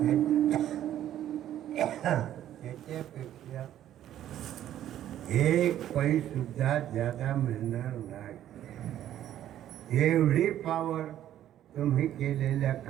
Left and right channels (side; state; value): left; quieter; 11.8 dB